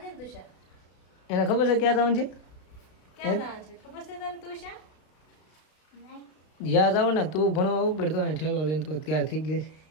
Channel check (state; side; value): late; right; 32 ms